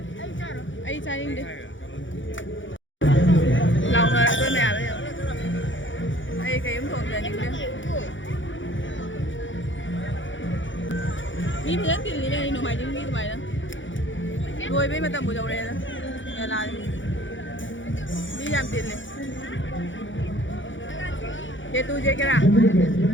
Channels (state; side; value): late; right; 0.56 ms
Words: ai cha đi lòng là tôi mẹ bây giờ ai cái ấm thùng giờ những cái mi phải tiền gì đây nó mày những mi tụi mày đó rồi bây mà tầm buổi đầu này đó nhà là đi làm tiền này ये तू जे करा